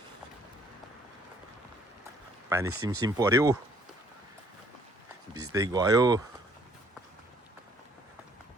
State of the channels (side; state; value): both; normal; correlation 0.63